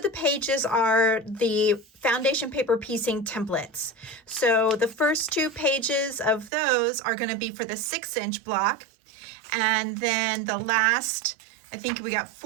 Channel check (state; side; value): drops out; left; at 6.5 s